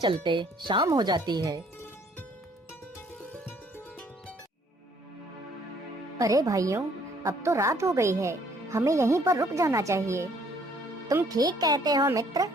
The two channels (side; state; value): both; normal; correlation 0.62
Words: शाम हो जाती है। अरे भाइयों, अब तो रात हो गई है, हमें यहीं पर रुक जाना चाहिए। तुम ठीक कहते हो मित्र,